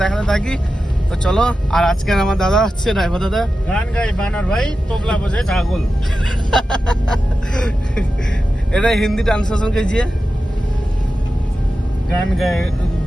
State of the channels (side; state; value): both; normal; correlation 0.92